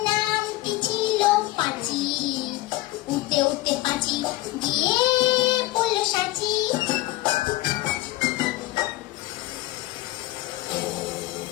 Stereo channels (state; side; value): quieter; right; 18.1 dB